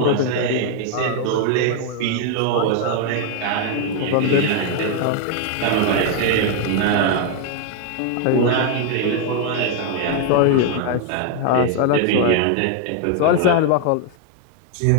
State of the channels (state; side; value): different; both; correlation 0.01